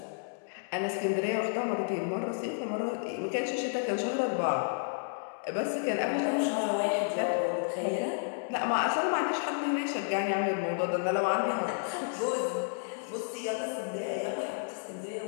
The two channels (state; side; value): silent; right; digital silence